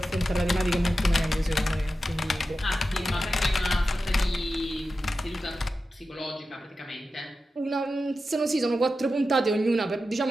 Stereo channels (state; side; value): normal; both; correlation 0.92